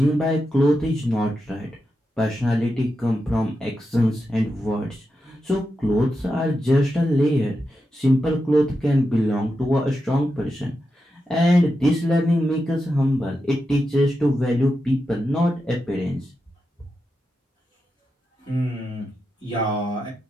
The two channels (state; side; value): normal; both; correlation 0.88